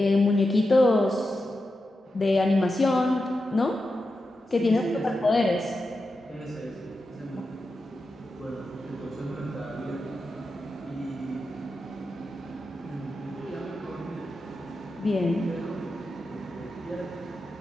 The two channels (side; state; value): both; normal; correlation 0.89